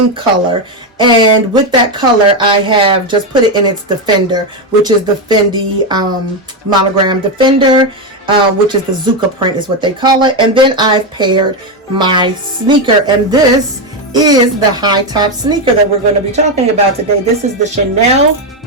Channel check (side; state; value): both; normal; correlation 0.08